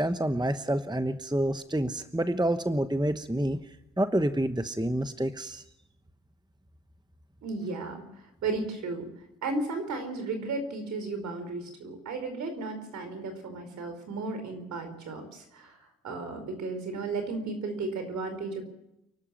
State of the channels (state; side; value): normal; both; correlation 0.68